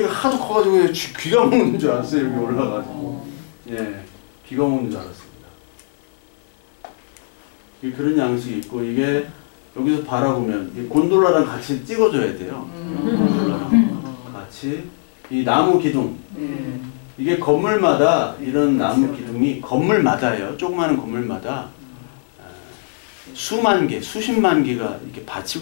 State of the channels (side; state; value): right; silent; 62 dB below the other